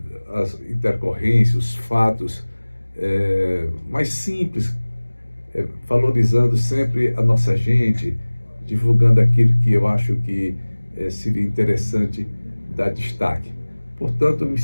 as intercorrências, os fatos mais simples, valorizando sempre a nossa gente, divulgando aquilo que eu acho que seria interessante dar destaque. Portanto, eu me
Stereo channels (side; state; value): both; inverted; correlation -1.00